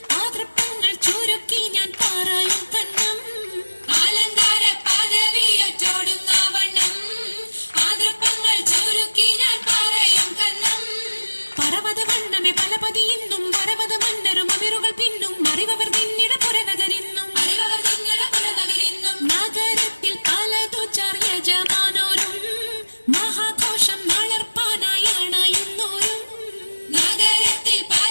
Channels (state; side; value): inverted; both; correlation -1.00